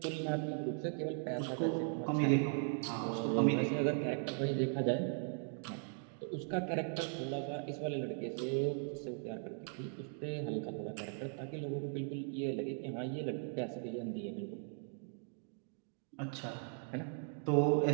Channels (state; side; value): silent; left; 52 dB below the other